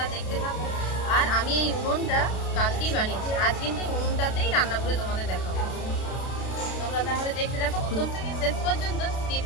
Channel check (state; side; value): late; right; 32 ms